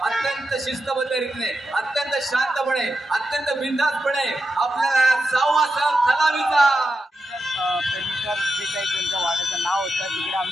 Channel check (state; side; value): normal; both; correlation 0.88